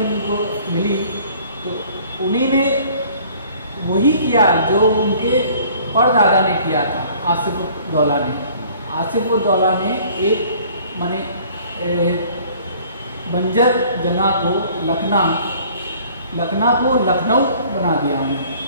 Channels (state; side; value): inverted; both; correlation -0.54